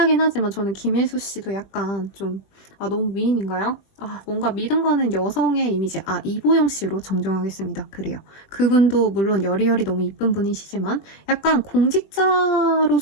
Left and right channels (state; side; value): late; right; 21 ms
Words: 하지만 저는 김혜수 씨도 약간 좀 너무 미인인가요? 뭔가 믿음 가는 여성의 이미지. 이보영 씨로 정정하겠습니다. 그래요. 그분도 물론 여리여리 너무 이쁜 분이시지만 약간